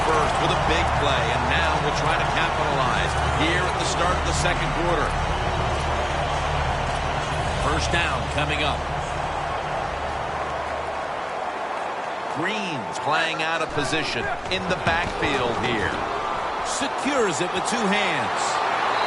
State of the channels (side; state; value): both; identical; correlation 1.00